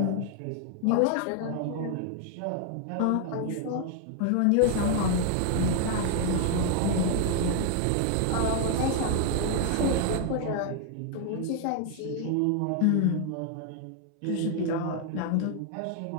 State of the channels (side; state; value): both; different; correlation 0.00